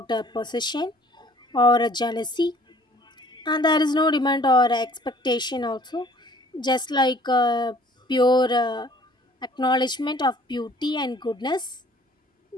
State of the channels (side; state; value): both; normal; correlation 0.55